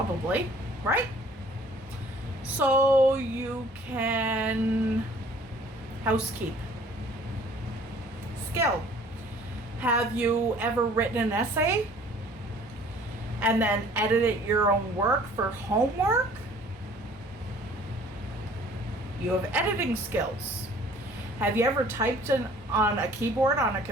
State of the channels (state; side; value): normal; both; correlation 0.53